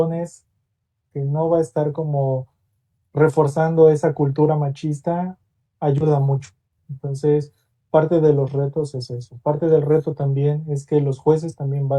que no va a estar como reforzando esa cultura machista ayuda mucho. Entonces, parte de los retos es eso. Parte del reto también es que los jueces también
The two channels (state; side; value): identical; both; correlation 1.00